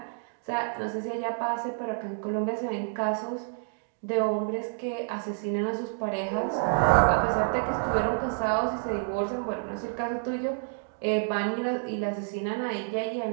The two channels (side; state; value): left; silent; digital silence